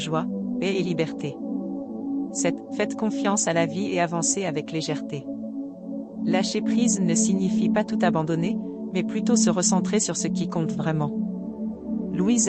paix et liberté. 7. Faites confiance à la vie et avancez avec légèreté. Lâcher prise ne signifie pas tout abandonner, mais plutôt se recentrer sur ce qui compte vraiment. Louise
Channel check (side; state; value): both; identical; correlation 1.00